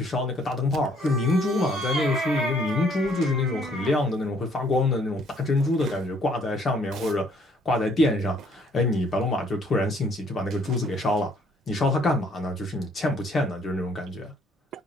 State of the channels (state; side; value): normal; both; correlation 0.63